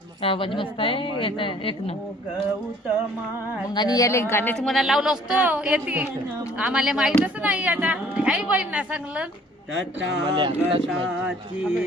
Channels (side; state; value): both; normal; correlation 0.56